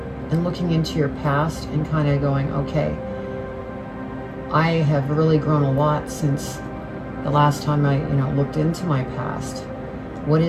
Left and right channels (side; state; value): both; identical; correlation 1.00